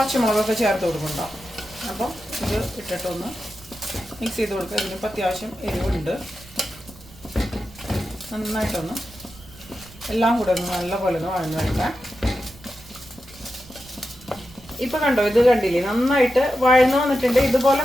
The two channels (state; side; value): noise; right; rumble, 21 dB below the sound